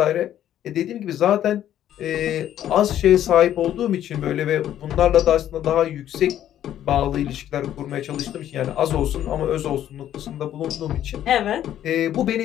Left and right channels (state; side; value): quieter; right; 11.4 dB